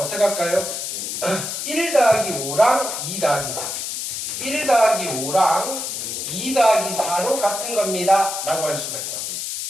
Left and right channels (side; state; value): left; noise; hiss, 4 dB below the sound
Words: 할까요? 1 더하기 5랑 2 더하기 4. 1 더하기 5랑 2 더하기 4로 같은 겁니다. 라고 할 수가 있다고요.